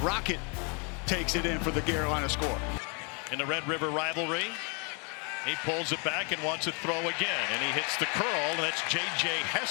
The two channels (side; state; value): right; quieter; 35.5 dB